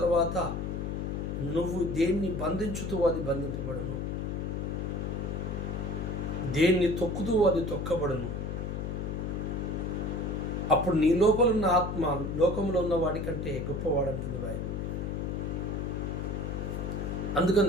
నువ్వు దేన్ని బంధించుతూ అది బంధింపబడును, దేన్ని తొక్కుతూ అది తొక్కబడును. అప్పుడు నీ లోపల ఉన్న ఆత్మ లోకంలో ఉన్న వాడి కంటే గొప్పవాడంటుంది బైబిల్.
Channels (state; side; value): noise; left; hum, 3 dB below the sound